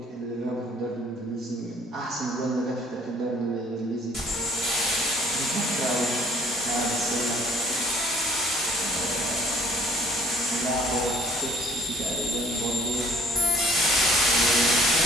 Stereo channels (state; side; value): normal; both; correlation 0.57